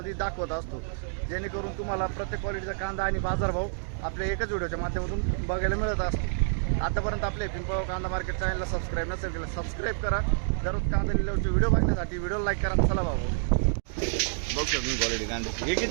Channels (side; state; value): left; silent; digital silence